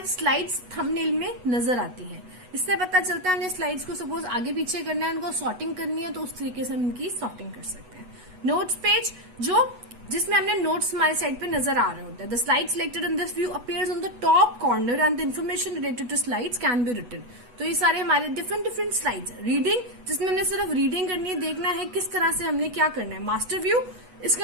स्लाइड्स थंबनेल में नजर आती है। इससे पता चलता है हमने स्लाइड्स को सपोज आगे पीछे करना है, उनको सॉर्टिंग करनी है, तो उस तरीके से हम इनकी सॉर्टिंग कर सकते हैं। नोट्स पेज जिसमें हमने नोट्स हमारे साइड पे नजर आ रहे होते हैं। The slide selected in this view appears on the top corner and the information related to slides can be written. तो ये सारे हमारे डिफरेंट स्लाइड्स। रीडिंग, जिसमें हमने सिर्फ रीडिंग करनी है, देखना है किस तरह से हमने क्या करना है। मास्टर व्यू, इसके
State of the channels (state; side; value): late; left; 8.1 ms